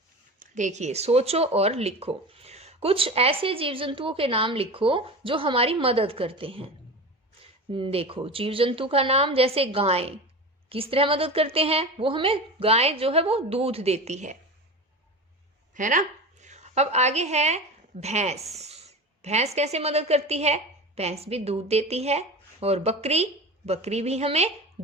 देखिए, सोचो और लिखो। कुछ ऐसे जीव जंतुओं के नाम लिखो जो हमारी मदद करते हैं। देखो, जीव जंतु का नाम, जैसे गाय किस तरह मदद करते हैं? वो हमें, गाय जो है वो दूध देती है ना। अब आगे है भैंस। भैंस कैसे मदद करती है? भैंस भी दूध देती है। और बकरी बकरी भी हमें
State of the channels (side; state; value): both; normal; correlation 0.30